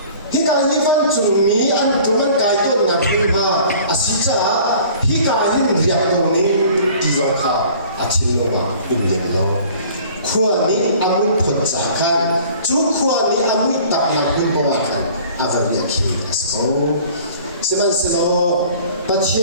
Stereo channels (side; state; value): both; inverted; correlation -0.49